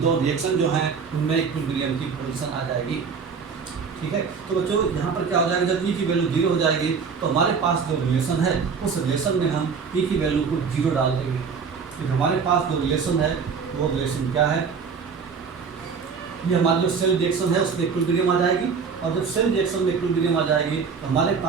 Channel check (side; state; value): left; quieter; 5.7 dB